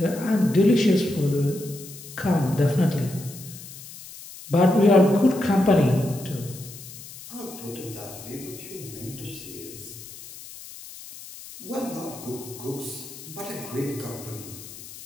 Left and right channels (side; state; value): left; noise; hiss, 15 dB below the sound